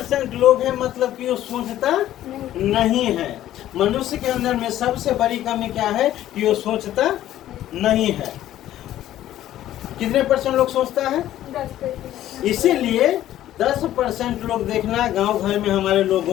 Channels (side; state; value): right; quieter; 13.0 dB